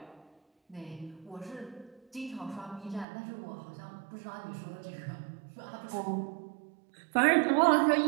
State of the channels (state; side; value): drops out; left; at 3.1 s